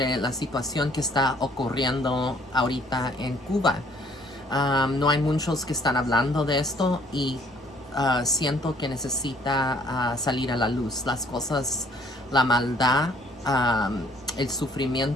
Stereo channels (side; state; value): both; normal; correlation 0.60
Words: la situación que está ocurriendo ahorita en Cuba. No hay muchos que están hablando de esto y siento que necesita salir a la luz. Las cosas, la maldad, el